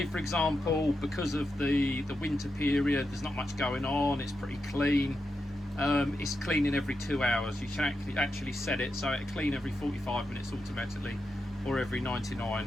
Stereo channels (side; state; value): both; normal; correlation 0.87